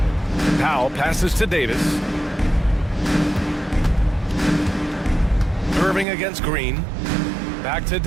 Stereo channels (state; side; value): drops out; left; at 6.1 s